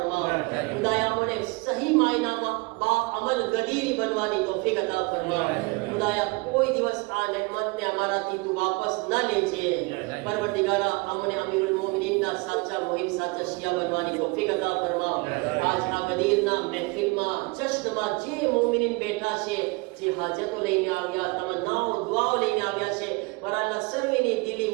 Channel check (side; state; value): left; quieter; 27.0 dB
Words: ખુદાયા, અમને સહી માયનામાં બા અમલ ગદીરી બનવાની તૌફીક અતા ફરમાવ. ખુદાયા, કોઈ દિવસ આ નેમતને અમારાથી તું વાપસ ન લેજે. પરવરદિગાર, અમને અમીરુલ મોમિનીનના સાચા મુહિમ, સાચા શિયા બનવાની તૌફીક અતા ફરમાવ. આજ આ ગદીરના મહેફિલમાં, જશ્નમાં જે મોમિનીન બેઠા છે, જે હાજતો લઈને આવ્યા, તમન્નાઓ, દુઆઓ લઈને આવ્યા છે, મારા અલ્લાહ સર્વેની